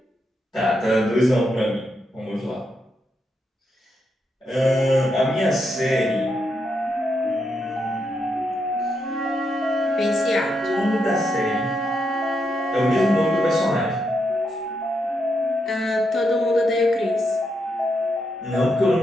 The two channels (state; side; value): normal; both; correlation 0.81